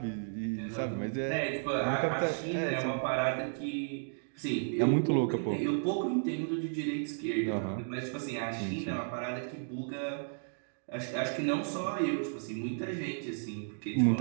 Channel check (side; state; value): left; silent; digital silence